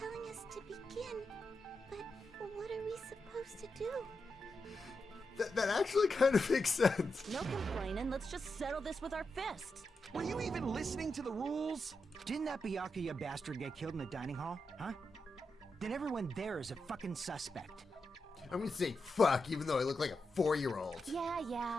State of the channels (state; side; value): normal; both; correlation 0.87